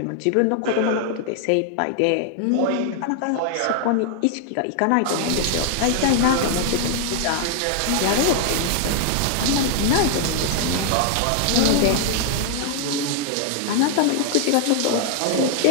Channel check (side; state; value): both; different; correlation 0.00